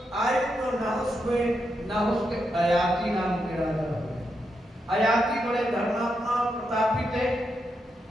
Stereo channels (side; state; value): both; normal; correlation 0.83